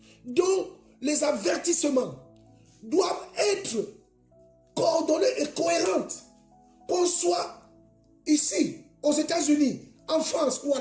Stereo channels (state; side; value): identical; both; correlation 1.00